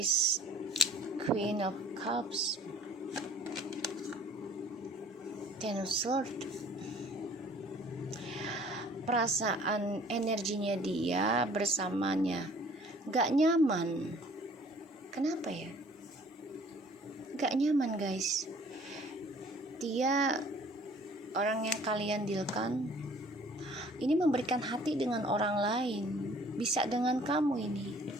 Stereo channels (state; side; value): normal; both; correlation 0.53